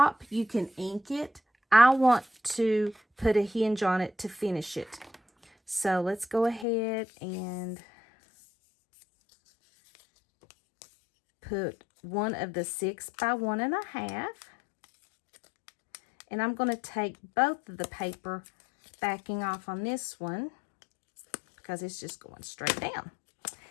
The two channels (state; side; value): drops out; right; at 6.7 s